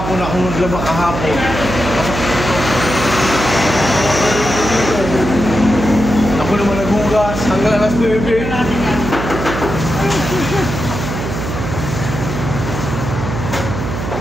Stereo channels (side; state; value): right; noise; hum, 5 dB below the sound